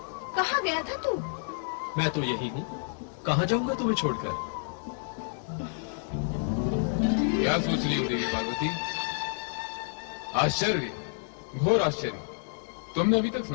कहाँ गया था तू? मैं तो यही हूँ, कहाँ जाऊंगा तुम्हें छोड़कर? क्या सोच रही हो देवी पार्वती? आश्चर्य, घोर आश्चर्य। तुमने अभी तक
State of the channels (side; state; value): right; silent; digital silence